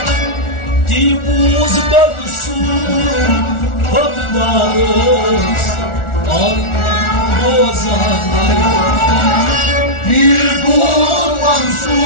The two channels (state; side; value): late; right; 1.4 ms